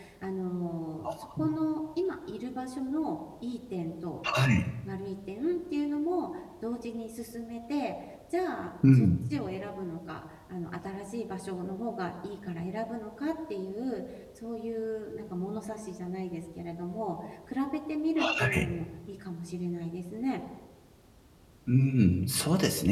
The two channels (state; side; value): identical; both; correlation 1.00